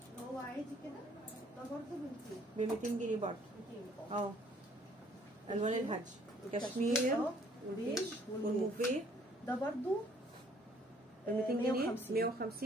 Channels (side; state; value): both; normal; correlation 0.61